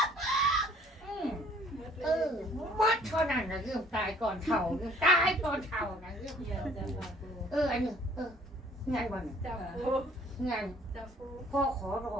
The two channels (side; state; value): both; normal; correlation 0.57